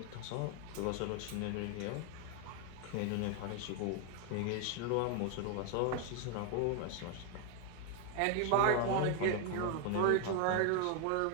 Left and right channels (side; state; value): both; different; correlation 0.01